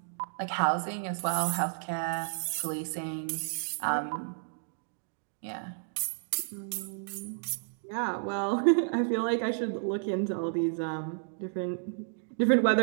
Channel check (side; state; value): left; silent; digital silence